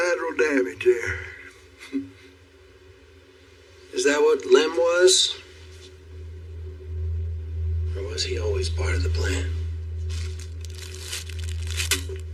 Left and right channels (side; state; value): both; identical; correlation 1.00